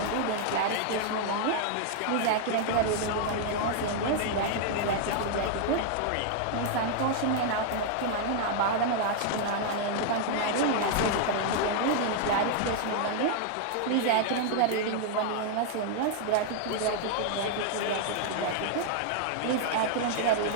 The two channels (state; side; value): different; both; correlation 0.00